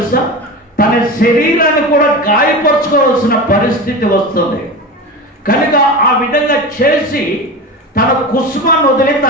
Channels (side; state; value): both; normal; correlation 0.26